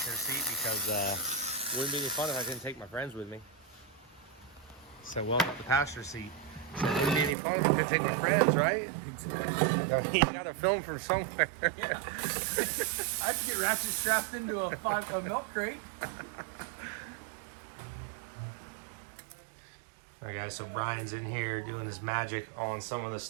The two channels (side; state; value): left; drops out; at 7.4 s